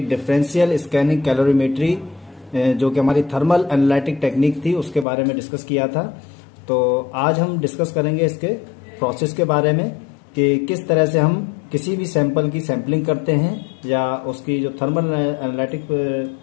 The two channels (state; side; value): drops out; right; at 5.1 s